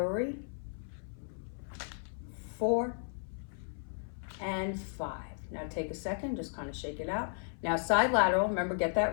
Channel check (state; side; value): silent; right; 55 dB below the other